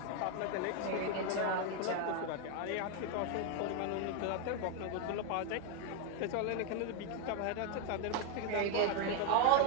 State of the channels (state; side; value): different; both; correlation 0.01